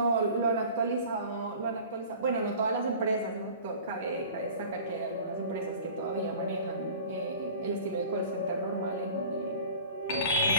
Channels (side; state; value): both; inverted; correlation -0.42